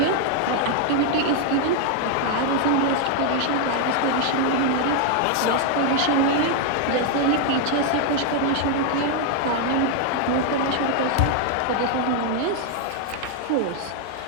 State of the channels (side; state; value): both; different; correlation 0.00